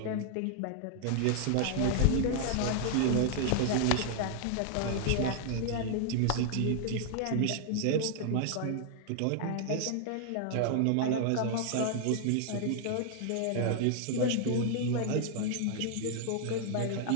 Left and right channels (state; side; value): different; both; correlation 0.00